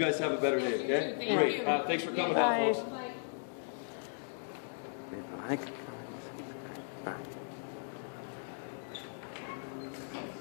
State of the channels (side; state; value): right; silent; digital silence